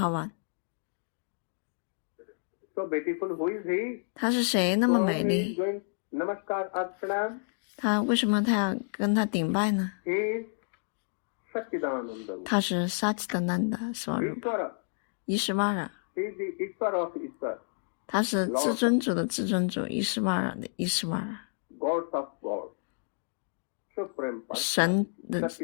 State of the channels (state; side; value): silent; right; digital silence